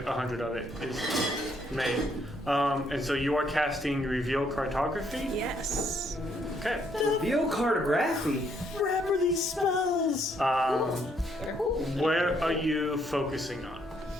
100 of it is made. And so you are casting reveal cartography. Yes. Okay. Reveal cartography? Remember these spells! Where are you focusing on?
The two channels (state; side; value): normal; both; correlation 0.71